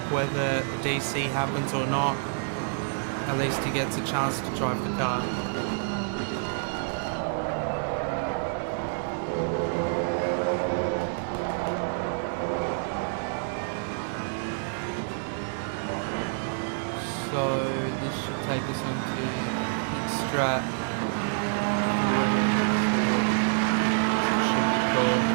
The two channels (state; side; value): silent; left; 60 dB below the other